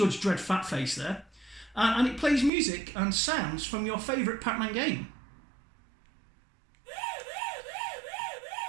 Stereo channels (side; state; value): left; drops out; at 2.5 s